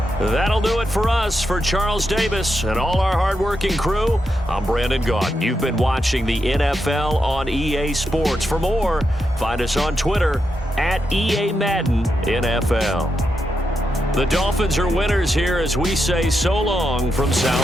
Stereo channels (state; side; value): normal; both; correlation 0.85